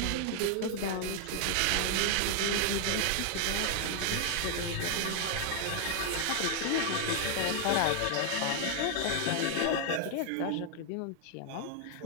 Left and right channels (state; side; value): different; both; correlation 0.00